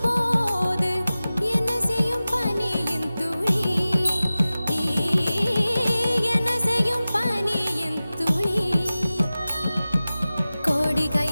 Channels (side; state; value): both; inverted; correlation -0.96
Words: போது, என்ன செய்யும் பனியின் துளி, என்ன செய்யும் பனியின் துளி. கோடி